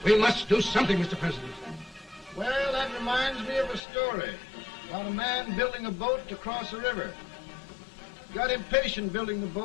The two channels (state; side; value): drops out; right; at 3.8 s